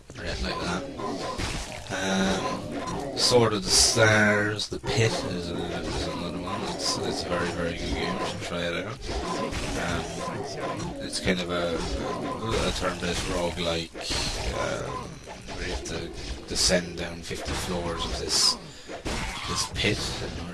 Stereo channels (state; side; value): identical; both; correlation 1.00